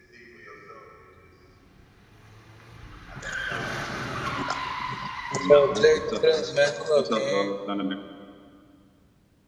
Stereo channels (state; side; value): identical; both; correlation 1.00